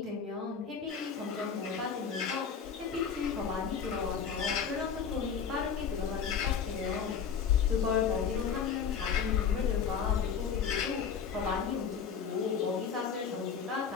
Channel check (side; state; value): right; quieter; 6.9 dB